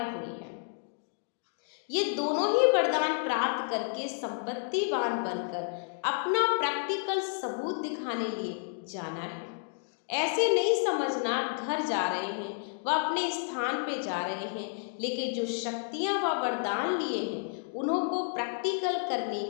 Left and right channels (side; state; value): right; silent; digital silence